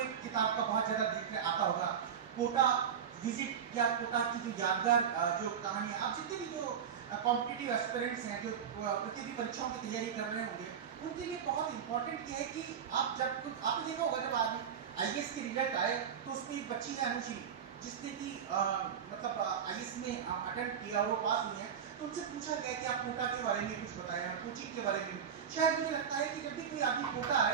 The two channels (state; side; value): quieter; left; 7.8 dB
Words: किताब का बहुत ज्यादा जिक्र आता होगा, कोटा विजिट या कोटा की जो यादगार जो कहानी है। आप जितने भी जो कॉम्पिटिटिव एस्पिरेंट्स हैं, जो प्रतियोगी परीक्षाओं की तैयारी कर रहे होंगे, उनके लिए बहुत इंपॉर्टेंट ये है कि आप जब आपने देखा होगा जब आज आईएएस के रिजल्ट आए तो उसमें एक बच्ची है अनुश्री, जिसने कि मतलब आईएएस में अटेम्प्ट किया, वो पास हुई है। तो उनसे पूछा गया कि आप कोटा के बारे में कुछ बताएं, कोचिंग के बारे में। शायद मुझे लगता है कि जब भी कोई आदमी कोटा